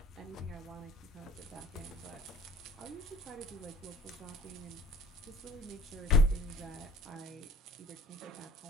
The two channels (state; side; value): normal; both; correlation 0.47